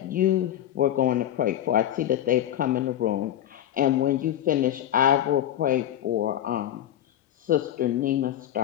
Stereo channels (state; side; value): quieter; right; 11.5 dB